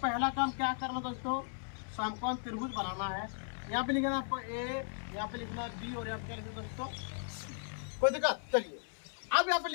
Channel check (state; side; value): silent; right; 54 dB below the other